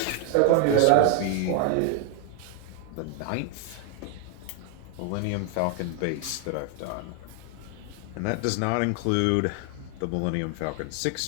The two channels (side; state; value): both; different; correlation 0.00